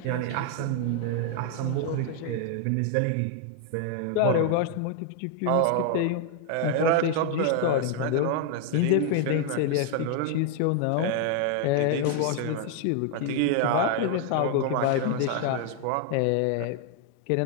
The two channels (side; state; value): both; different; correlation 0.00